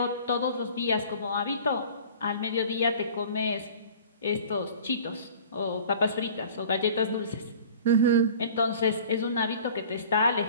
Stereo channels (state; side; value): inverted; both; correlation -0.45